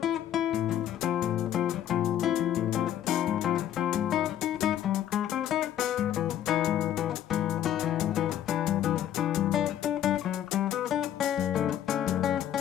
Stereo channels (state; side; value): quieter; right; 11.1 dB